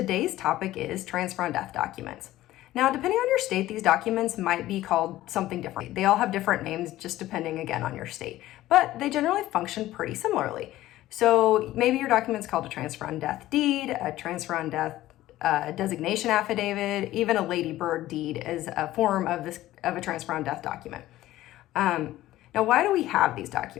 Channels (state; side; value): quieter; right; 15.3 dB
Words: topic is transfer on death documents. Now, depending on your state, these documents might be called something different. They all have different names, just depending again on your state, but they generally function pretty similarly. So maybe your document's called a transfer on death deed, a transfer on death designation affidavit, even a ladybird deed is a form of a transfer on death document. Now, why do we have these